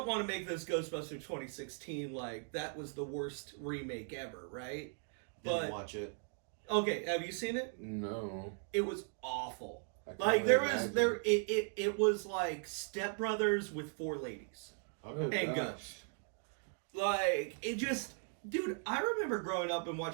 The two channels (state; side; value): silent; left; 52 dB below the other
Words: want to make this Ghostbusters 2016 like that was the worst remake ever, right? Didn't But watch it. okay, have you seen it? no. It was awful. I can't Like there really was imagine. it was like Step Brothers with 4 ladies Okay. and Ghost. Like it just, dude. I remember growing up and